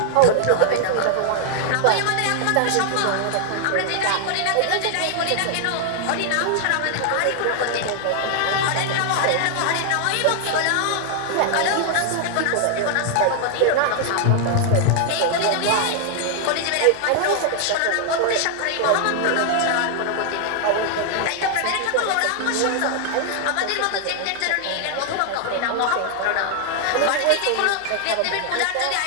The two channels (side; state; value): both; different; correlation 0.00